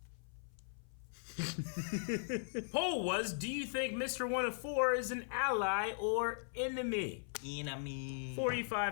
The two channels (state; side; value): silent; right; 52 dB below the other